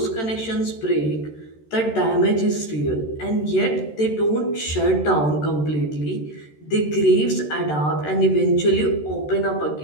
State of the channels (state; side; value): late; right; 13 ms